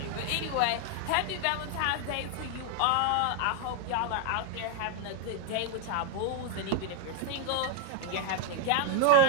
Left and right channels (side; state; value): both; different; correlation 0.00